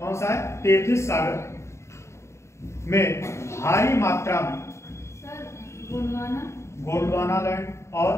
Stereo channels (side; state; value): right; late; 0.14 ms